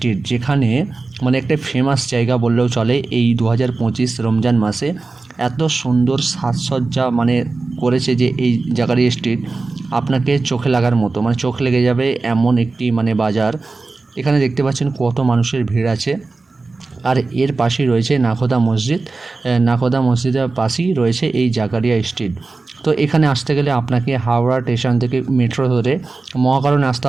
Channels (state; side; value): quieter; left; 3.7 dB